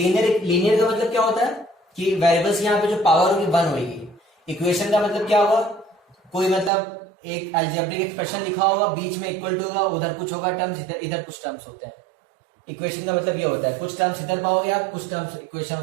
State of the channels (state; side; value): drops out; left; at 6.7 s